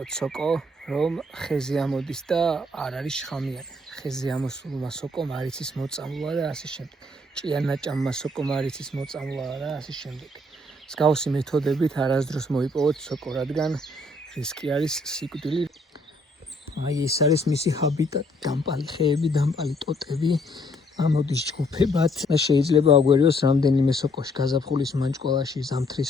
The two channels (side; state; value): both; normal; correlation 0.67